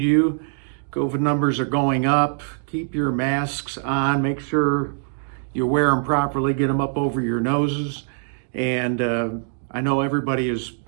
you, COVID numbers are going up. Keep your masks on. Make sure you wear them properly. Get them up over your noses. And I know everybody is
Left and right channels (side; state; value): left; silent; digital silence